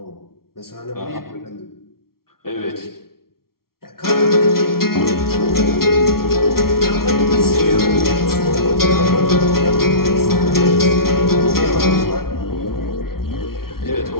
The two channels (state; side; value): late; right; 0.93 ms